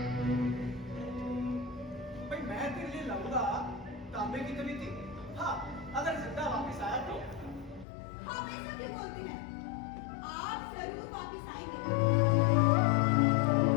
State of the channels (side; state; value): right; drops out; at 7.9 s